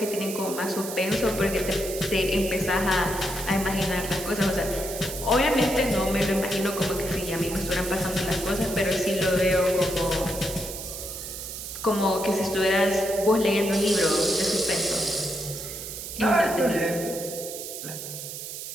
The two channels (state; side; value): noise; right; hiss, 8 dB below the sound